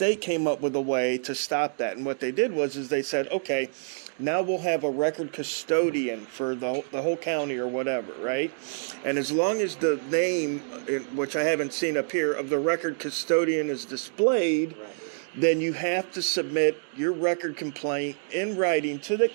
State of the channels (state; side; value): silent; left; digital silence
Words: came up with a way to stop that. And what they did was they said, okay, now we'll have a record custodian for the whole county or whatever, right? And as long as the name, which I haven't seen up here, of the record custodian is displayed, Right. then you have to submit your record complaint in writing to the